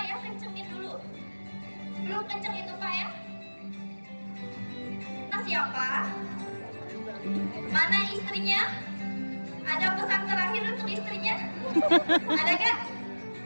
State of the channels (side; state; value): both; inverted; correlation -1.00